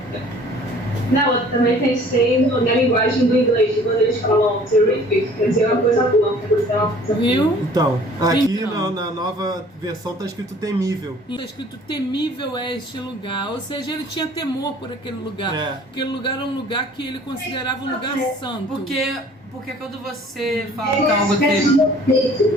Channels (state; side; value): normal; both; correlation 0.52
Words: Não, eu também pensei na linguagem do inglês, quando eles falam terrific, quer dizer uma coisa boa, quer dizer uma coisa Viu? Então, aqui Então. na nova versão tá escrito temível. Está escrito temível é este lugar, ou seja, ele tinha temor por aquele lugar. É. Aquele lugar era um lugar que ele considerava um lugar santo. Porque quando você fala que É algo uma espécie terrível. de respeito,